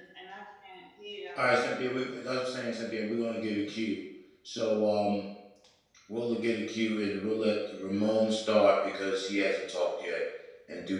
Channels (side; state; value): both; identical; correlation 1.00